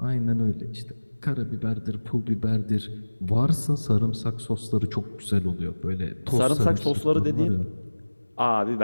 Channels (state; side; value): inverted; both; correlation -1.00